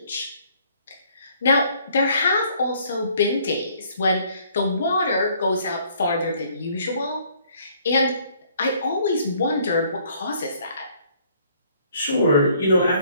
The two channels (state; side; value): inverted; both; correlation -0.62